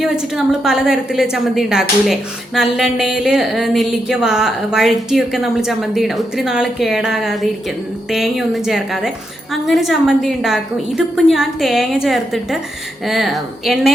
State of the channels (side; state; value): both; normal; correlation 0.83